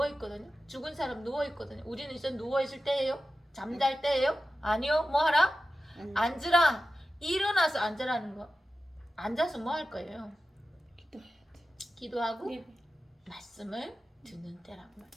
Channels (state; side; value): normal; both; correlation 0.93